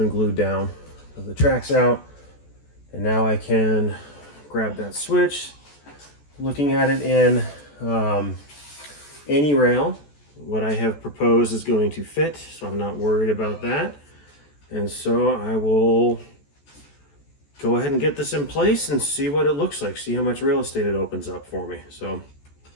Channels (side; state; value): right; late; 14 ms